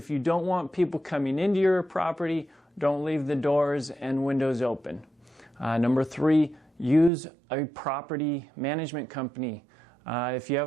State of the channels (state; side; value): drops out; left; at 7.1 s